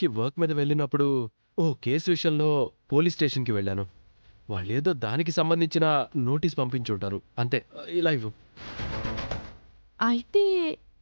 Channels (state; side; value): inverted; both; correlation -1.00